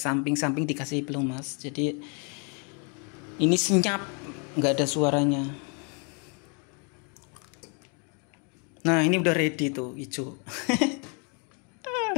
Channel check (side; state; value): right; quieter; 36.1 dB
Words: dikasih pelumas, jadi ini senyap, nggak ada suaranya. Nah ini udah ready tuh hijau.